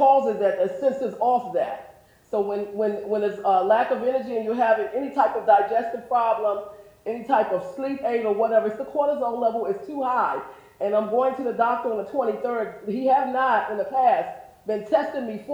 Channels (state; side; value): identical; both; correlation 1.00